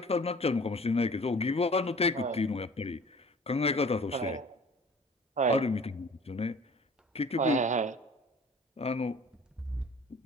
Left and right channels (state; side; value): normal; both; correlation 0.48